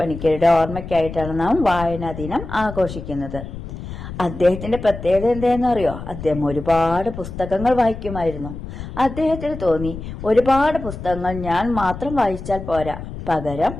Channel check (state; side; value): noise; left; rumble, 10 dB below the sound